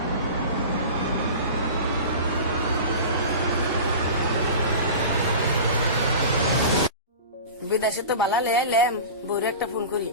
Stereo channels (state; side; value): inverted; both; correlation -0.33